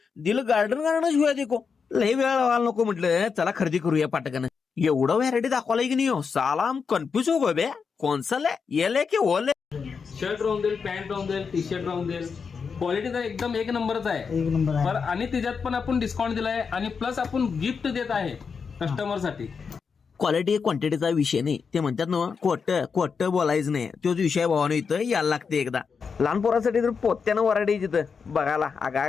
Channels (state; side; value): quieter; right; 5.7 dB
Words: दिल गार्डन शिवाय देखो लई वेळ लावायला नको म्हटलं. चला खरेदी करूया पाटकन. एवढं व्हॅरायटी दाखवलाय की नाही हो साला हम कन्फ्युज हो गए बे. कोणसा ले ये की वो ले. शर्ट राहून देईल, पॅन्ट राहून देईल, टी शर्ट राहून देईल. क्वालिटी तर एकदम एक नंबरच आहे. एक नंबर आहे. पर आणि त्याच्यात पण आपण डिस्काउंट दिलाय आणि प्लस आपण गिफ्ट देत आहे कस्टमर साठी. क्वालिटी क्वांटिटीचा विषय नाही. ते म्हणतात ना खोट बोलायचं नाही. तोच विषय भावानं इथं यायला लागते एकदा. लहान पोरासाठी तर पोत्यानं वराडी तिथं बघायला आगा